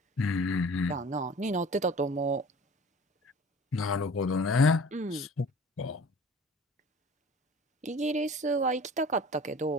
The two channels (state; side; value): normal; both; correlation 0.44